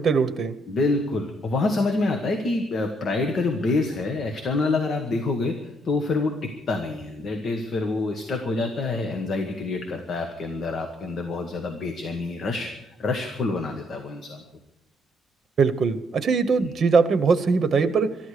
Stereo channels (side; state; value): both; normal; correlation 0.71